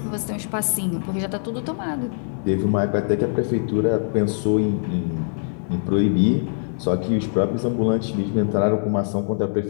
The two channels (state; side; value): silent; right; 56 dB below the other